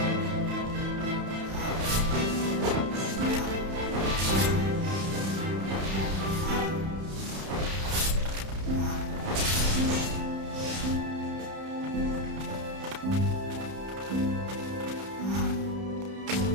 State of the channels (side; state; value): left; late; 31 ms